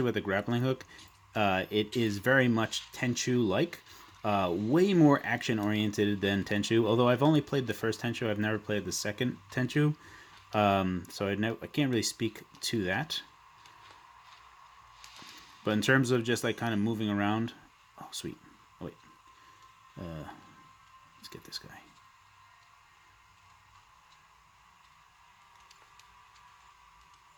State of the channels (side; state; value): both; identical; correlation 1.00